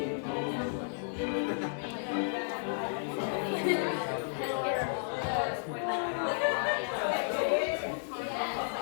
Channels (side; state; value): right; silent; digital silence